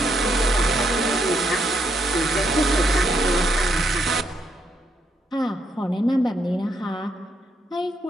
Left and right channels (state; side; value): normal; both; correlation 0.76